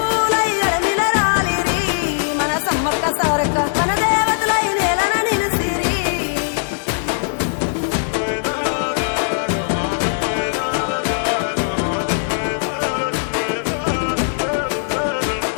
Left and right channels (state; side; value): silent; right; digital silence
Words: ఎడమిల రాలిరి మన సమ్మక్క సారక్క మన దేవతలై నేలన నిలిసిరి